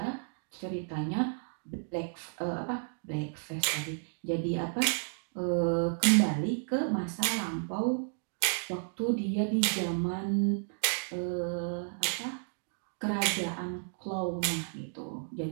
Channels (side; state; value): left; silent; digital silence